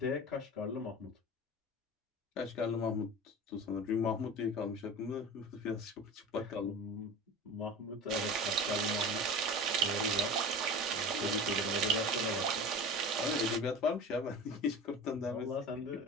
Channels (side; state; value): both; normal; correlation 0.33